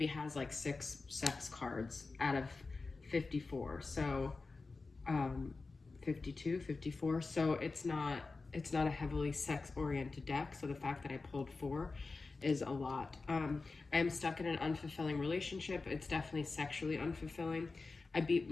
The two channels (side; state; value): right; quieter; 3.9 dB